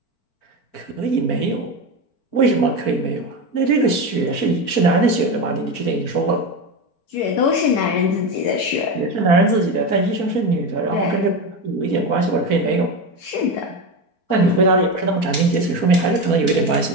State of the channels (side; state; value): right; late; 4.5 ms